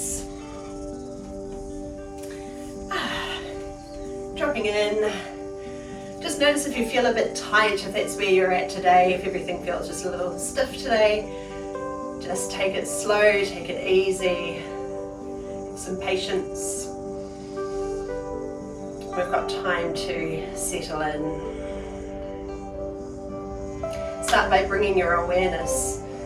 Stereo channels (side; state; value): both; identical; correlation 1.00